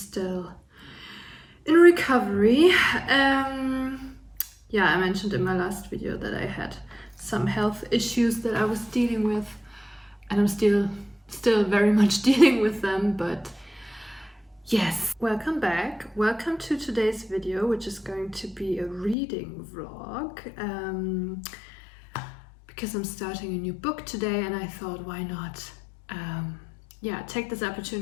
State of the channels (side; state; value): right; drops out; at 19.2 s